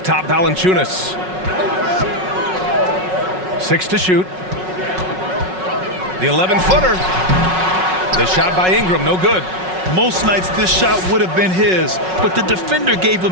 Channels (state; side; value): late; left; 5.4 ms